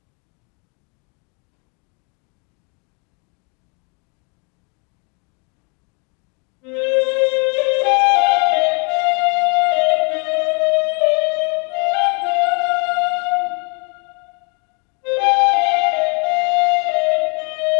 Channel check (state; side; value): quieter; right; 35.1 dB